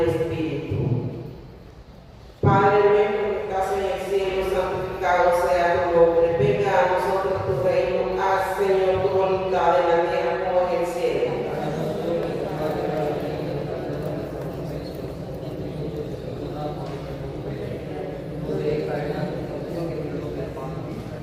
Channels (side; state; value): both; identical; correlation 1.00